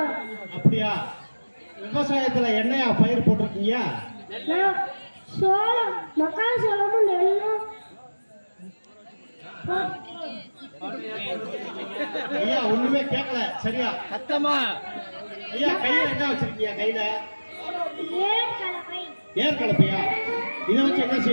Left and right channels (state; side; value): inverted; both; correlation -1.00